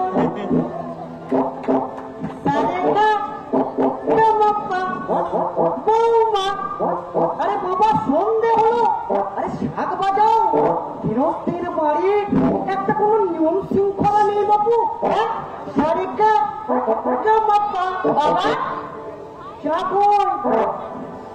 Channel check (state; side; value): identical; both; correlation 1.00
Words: বৌমা, আরে বাবা সন্ধে হলো, আরে শাক বাজাও। গৃহস্থের বাড়ি একটা কোনো নিয়ম শৃঙ্খলা নেই বাবু। সারিকা বাবা